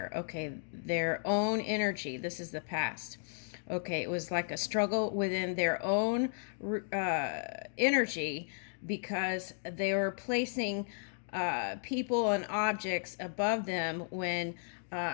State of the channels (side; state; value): right; silent; digital silence